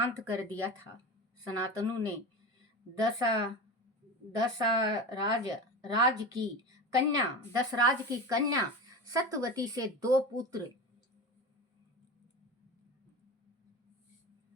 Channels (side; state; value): both; normal; correlation 0.27